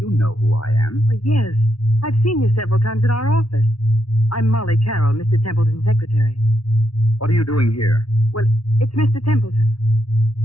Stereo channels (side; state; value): right; late; 0.74 ms